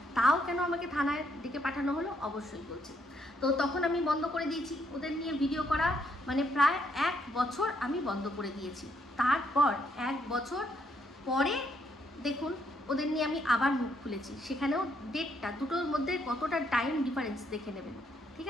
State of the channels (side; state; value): both; normal; correlation 0.74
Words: তাও কেন আমাকে থানায় ডেকে পাঠানো হলো অবশ্যই বলছি। তো তখন আমি বন্ধ করে দিয়েছি ওদের নিয়ে ভিডিও করা, মানে প্রায় 1 বছর আমি বন্ধ করে দিয়েছি। তারপর 1 বছর পরে দেখুন ওদের নিয়ে আমি আবার মুখ খুলেছি, সেখানেও ডেটটা, দুটোর মধ্যে কতটা টাইম ডিফারেন্স দেখে নেবেন, ঠিক